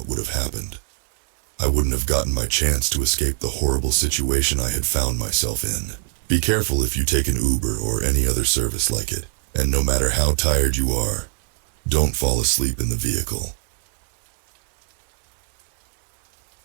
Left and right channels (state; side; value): silent; left; 57 dB below the other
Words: would have happened. I wouldn't have gotten my chance to escape the horrible situation I had found myself in. Be careful if you take an Uber or any other service like it, and no matter how tired you are, don't fall asleep in the vehicle.